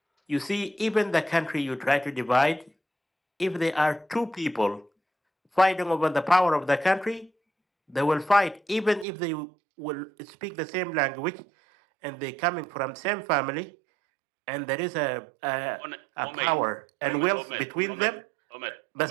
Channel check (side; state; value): left; drops out; at 9.1 s